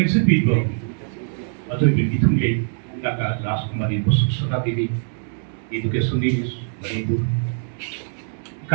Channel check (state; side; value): silent; left; 64 dB below the other